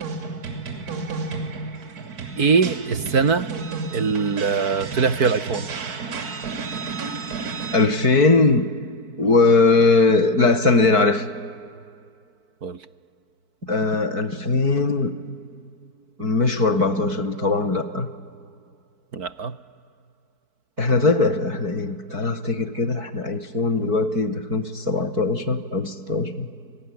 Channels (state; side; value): late; left; 4.5 ms